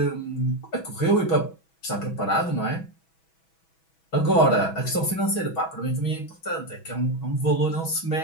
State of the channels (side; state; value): right; late; 6.2 ms